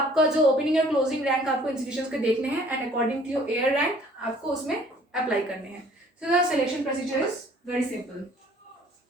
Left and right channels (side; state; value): both; normal; correlation 0.55